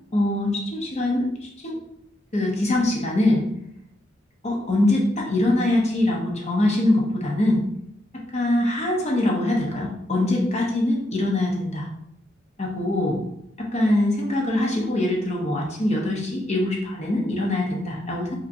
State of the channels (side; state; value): both; normal; correlation 0.80